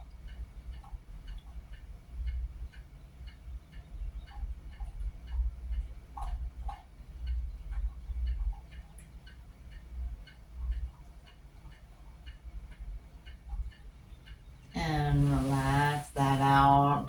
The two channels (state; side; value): identical; both; correlation 1.00